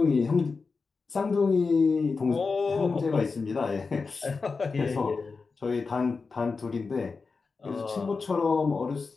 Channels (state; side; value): quieter; right; 4.5 dB